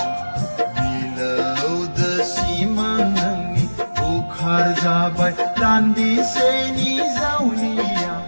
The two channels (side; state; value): both; inverted; correlation -1.00